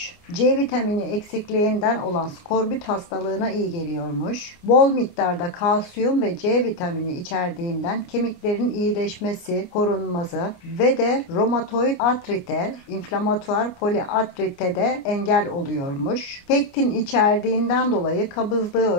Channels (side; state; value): right; late; 29 ms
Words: C vitamini eksikliğinden olan skorbut hastalığına iyi geliyormuş. Bol miktarda kalsiyum ve C vitamini içerdiğinden kemiklerin iyileşmesi, korunması ve de romatoid artrite, inflamatuar poliartrite de engel oluyormuş. Pektin içerdiğinden dolayı kabızlığı